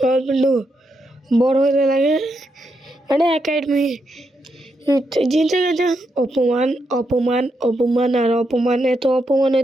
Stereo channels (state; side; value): normal; both; correlation 0.82